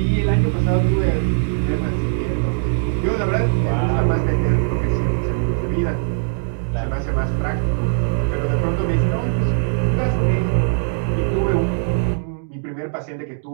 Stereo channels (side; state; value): left; silent; digital silence